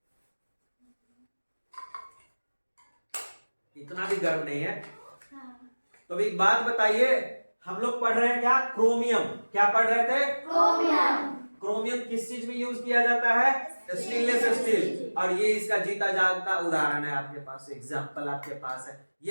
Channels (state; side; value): inverted; both; correlation -1.00